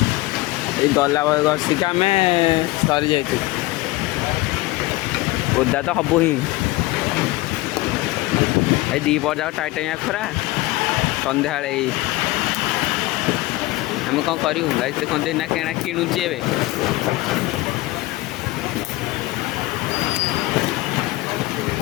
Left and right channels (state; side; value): quieter; right; 19.7 dB